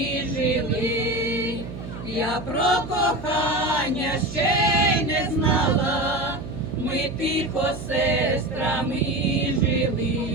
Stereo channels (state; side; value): noise; right; hum, 10 dB below the sound